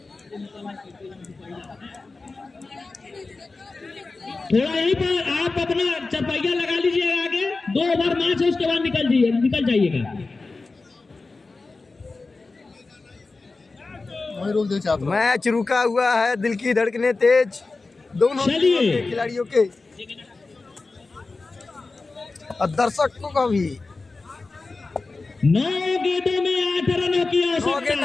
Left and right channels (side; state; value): right; quieter; 3.7 dB